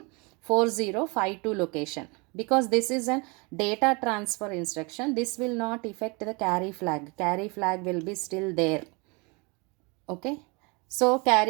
4052 location. Because this is a data transfer instruction, this will not affect the carry flag. Carry flag will be still there. Okay. So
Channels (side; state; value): left; quieter; 29.1 dB